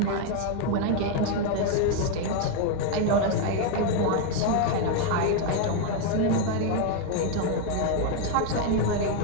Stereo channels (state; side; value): different; both; correlation 0.01